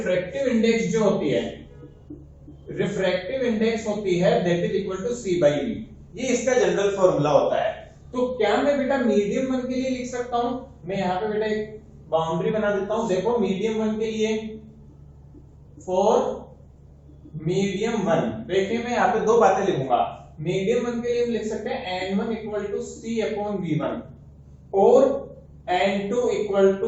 इंडेक्स जो होती है, रिफ्रैक्टिव इंडेक्स होती है that is equal to c by v। ये इसका जनरल फॉर्मूला होता है। तो क्या मैं बेटा मीडियम 1 के लिए लिख सकता हूं? मैं यहां पे बेटा एक बाउंड्री बना देता हूं। देखो मीडियम 1 के लिए, फॉर मीडियम 1, देखिए मैं यहाँ पे दो बातें लिखूंगा। मीडियम 1 के लिए हम लिख सकते हैं n1 equal to c upon v1 और n2 इक्वल टू,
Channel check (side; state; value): both; identical; correlation 1.00